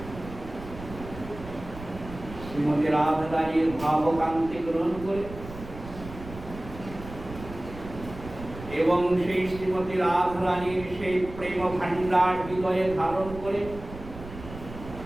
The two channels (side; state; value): right; noise; rumble, 13 dB below the sound